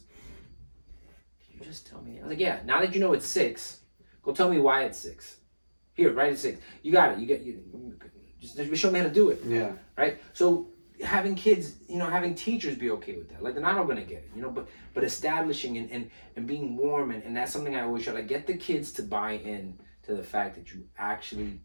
Can you just tell me? I was like, yeah. Now that you know it's 6, go tell me why it's 6. Here, write it 6. You got it. Just show me how to do it. Yeah. Right. So having kids, you know, having teachers be okay with that. Like they're not all gonna get it, you know, but establishing and being warm and that's something I always try to get the kids to buy in to the fact that you actually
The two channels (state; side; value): inverted; both; correlation -1.00